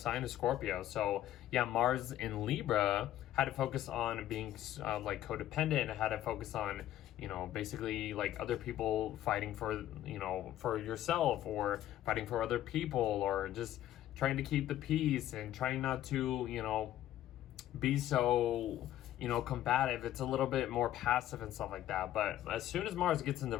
of Scorpio. So yeah, Mars in Libra had to focus on being like codependent, had to focus on, basically like other people fighting for, for yourself, or fighting for other people, or just trying to keep the peace and trying not to, be so, combative. It's a little bit more passive and stuff like that. But as soon as Mars gets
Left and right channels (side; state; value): right; quieter; 12.8 dB